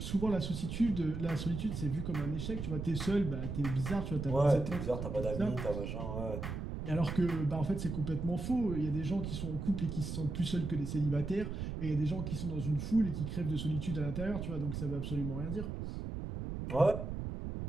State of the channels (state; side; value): noise; right; rumble, 5 dB below the sound